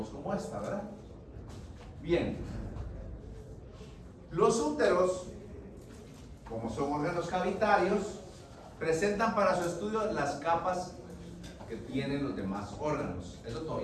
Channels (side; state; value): both; identical; correlation 1.00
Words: como esta, ¿verdad? Bien. Los úteros, como son órganos cavitarios, presentan para su estudio las capas que tienen los demás órganos. Eso